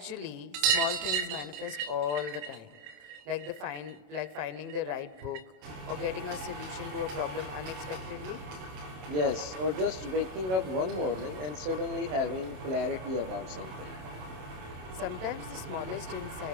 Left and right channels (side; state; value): left; late; 27 ms